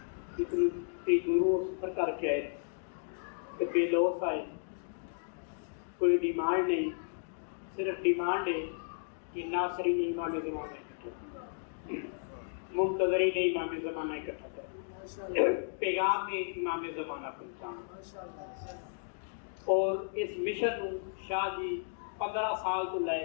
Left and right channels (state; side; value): silent; right; digital silence